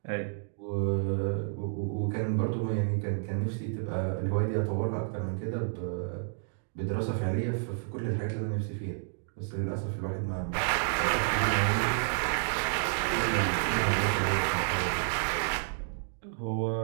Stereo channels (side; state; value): left; silent; digital silence